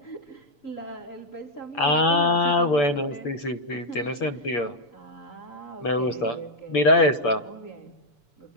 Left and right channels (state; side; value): late; right; 6.9 ms